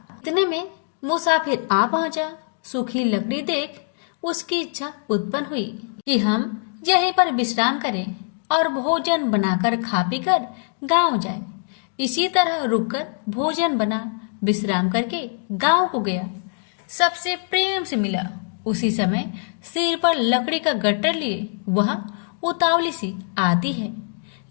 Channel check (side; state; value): right; silent; 58 dB below the other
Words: इतने में मुसाफिर आ पहुंचा। सूखी लकड़ी देख उसकी इच्छा उत्पन्न हुई कि हम यहीं पर विश्राम करें और भोजन बनाकर खा पी कर गाँव जाए। इसी तरह रुककर भोजन बना, विश्राम करके गाँव को गया। सबसे प्रेम से मिला। उसी समय सिर पर लकड़ी का गट्टर लिए वह उतावली सी आती है।